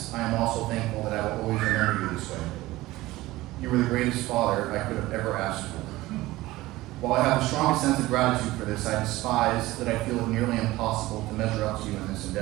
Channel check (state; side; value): quieter; left; 18.1 dB